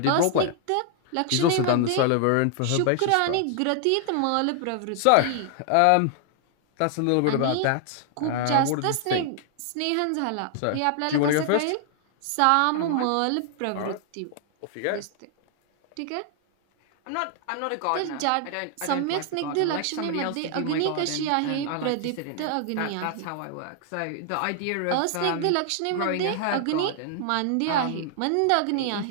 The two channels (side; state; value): both; different; correlation 0.00